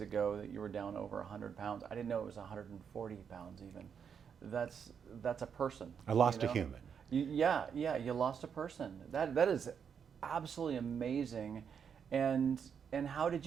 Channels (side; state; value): left; quieter; 7.2 dB